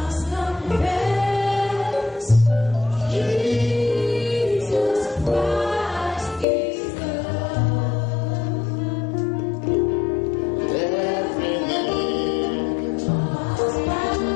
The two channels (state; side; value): drops out; right; at 6.5 s